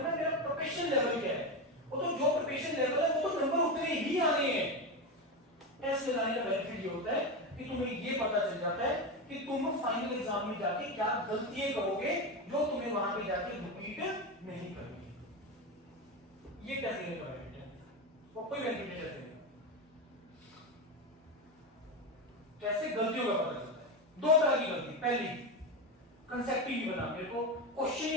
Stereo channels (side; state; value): both; normal; correlation 0.16